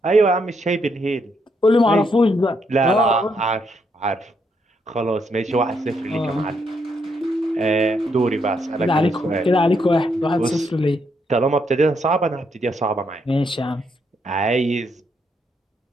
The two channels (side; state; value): both; normal; correlation 0.76